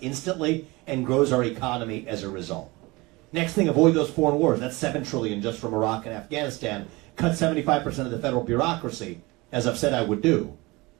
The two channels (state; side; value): quieter; left; 23.1 dB